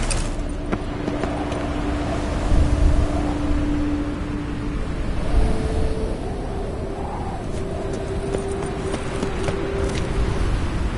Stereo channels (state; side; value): identical; both; correlation 1.00